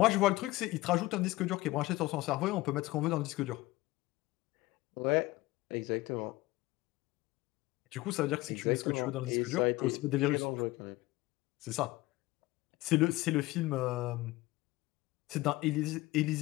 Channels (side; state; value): right; quieter; 19.1 dB